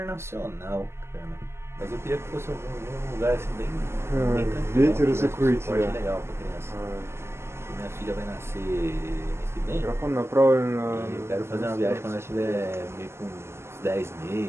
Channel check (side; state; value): left; late; 0.12 ms